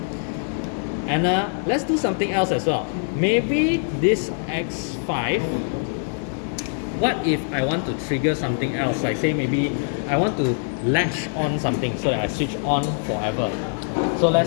And let's do something else as well. Maybe this X5, what if I want to trigger something else? Like say maybe I want to latch on something so that I switch on forever. So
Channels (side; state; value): right; silent; 63 dB below the other